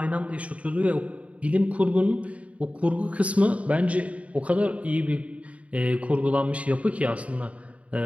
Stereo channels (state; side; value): late; left; 0.065 ms